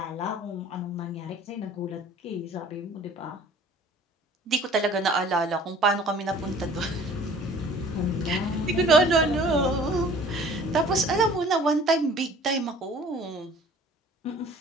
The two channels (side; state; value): both; normal; correlation 0.49